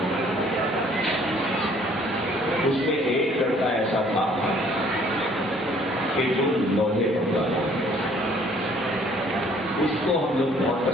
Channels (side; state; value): both; normal; correlation 0.59